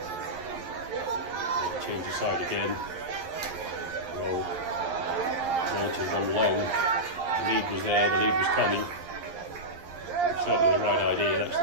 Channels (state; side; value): late; left; 11 ms